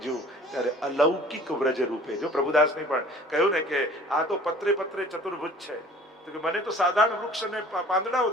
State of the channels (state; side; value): normal; both; correlation 0.49